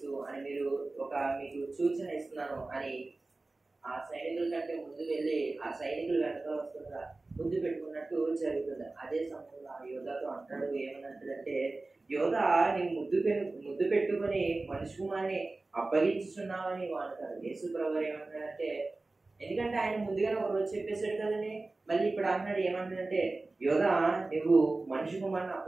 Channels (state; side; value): quieter; left; 3.3 dB